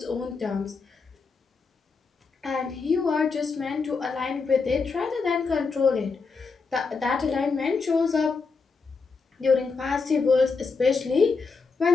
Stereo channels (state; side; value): quieter; right; 4.7 dB